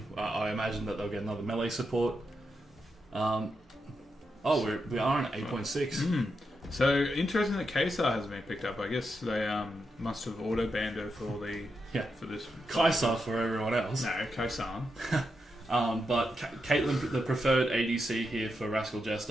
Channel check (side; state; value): both; normal; correlation 0.85